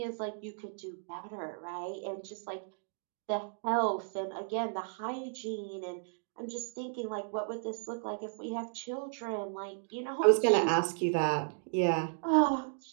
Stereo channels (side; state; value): left; silent; digital silence